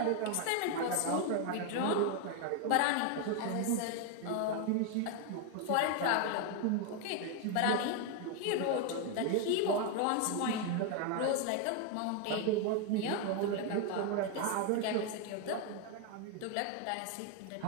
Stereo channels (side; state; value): both; different; correlation 0.01